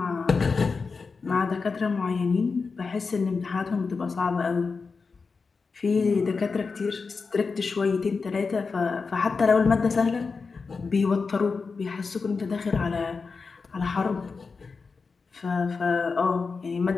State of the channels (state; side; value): quieter; right; 4.7 dB